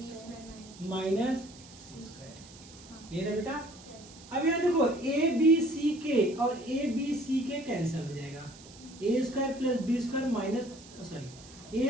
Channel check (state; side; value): noise; right; hiss, 20 dB below the sound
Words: minus C square, ये ना बेटा? अब यहाँ देखो ए बी सी के और ए बी सी के कैंसिल हो जाएगा, a square plus B square minus, sorry